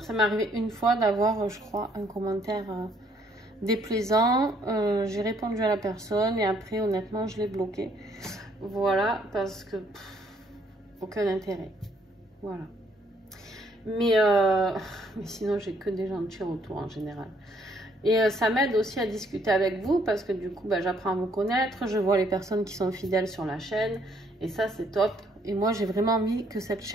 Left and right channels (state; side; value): normal; both; correlation 0.66